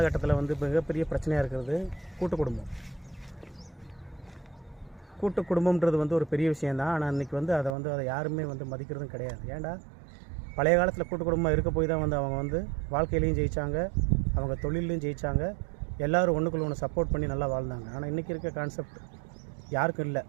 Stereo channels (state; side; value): drops out; left; at 7.8 s